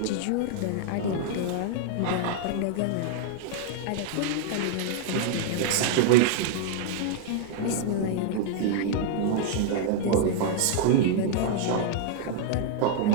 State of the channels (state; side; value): different; both; correlation 0.00